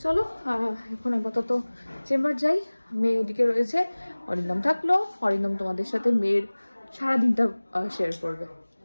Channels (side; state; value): both; inverted; correlation -1.00